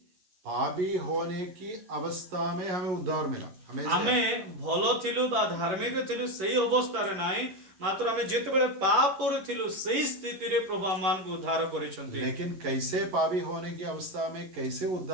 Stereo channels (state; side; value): late; left; 11 ms